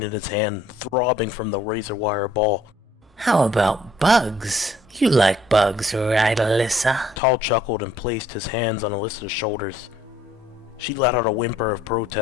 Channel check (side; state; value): both; normal; correlation 0.61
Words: in his hand, throbbing from the razor-wire ball. How about bugs? You like bugs, right, Alyssa? Tall chuckled and placed his hands on Alyssa's shoulders. She let out a whimper of